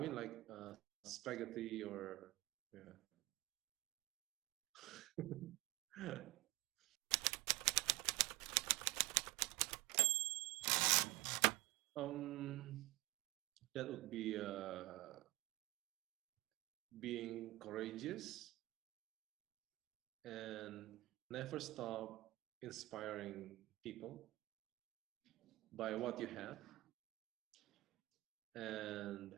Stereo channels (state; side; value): quieter; left; 19.9 dB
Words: like spaghetti or yeah. That would be being courageous and never stop inspiring people by what you have